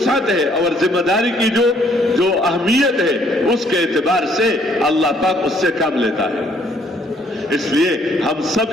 ہے اور ذمہ داری کی جو اہمیت ہے اس کے اعتبار سے اللہ پاک اس سے کام لیتا ہے. اس لیے ہم سب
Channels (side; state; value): both; normal; correlation 0.65